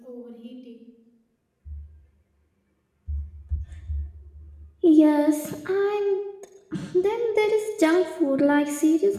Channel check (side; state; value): both; identical; correlation 1.00